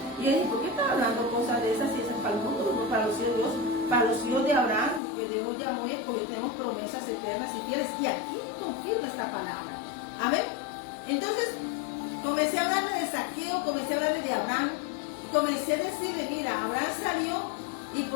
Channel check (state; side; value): drops out; right; at 5.0 s